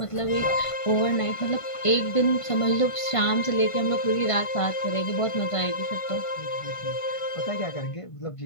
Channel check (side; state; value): right; late; 1.5 ms